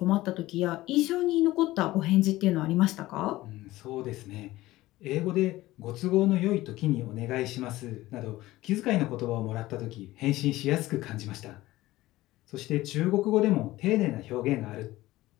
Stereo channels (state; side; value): quieter; right; 17.3 dB